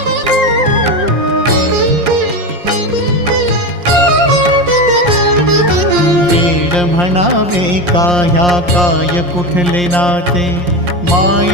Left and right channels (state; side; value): late; left; 5.7 ms